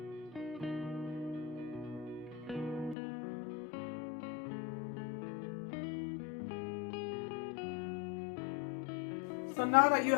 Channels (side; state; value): right; drops out; at 3.0 s